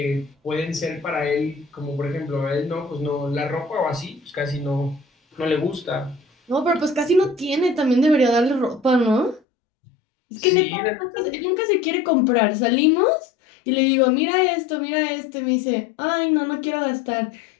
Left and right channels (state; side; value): drops out; right; at 9.4 s